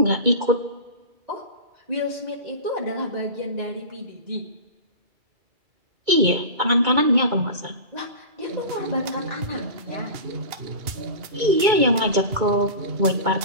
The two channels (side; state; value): left; late; 2.2 ms